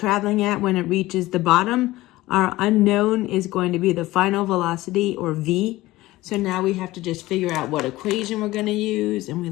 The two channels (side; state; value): right; quieter; 18.0 dB